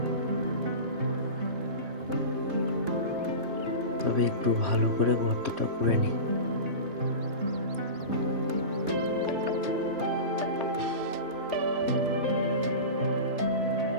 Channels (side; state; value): left; late; 3.3 ms